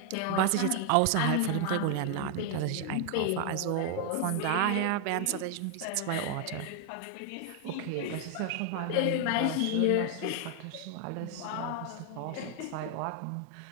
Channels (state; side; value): different; both; correlation 0.00